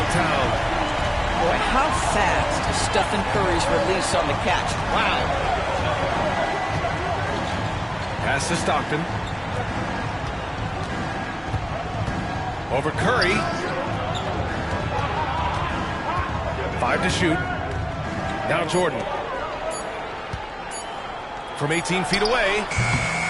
Boy, how fast is Stephen Curry's release on the catch. Wow. Pass to Stockton. Over Curry. 5 to shoot. Now Jordan. From 18 feet away.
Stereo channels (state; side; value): identical; both; correlation 1.00